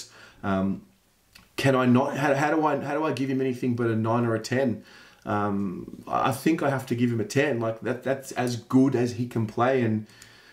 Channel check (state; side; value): identical; both; correlation 1.00